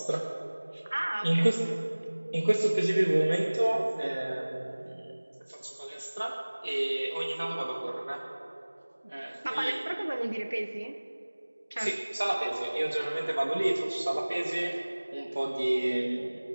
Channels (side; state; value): both; inverted; correlation -1.00